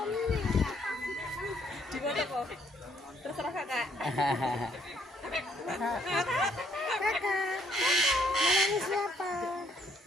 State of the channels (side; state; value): both; normal; correlation 0.68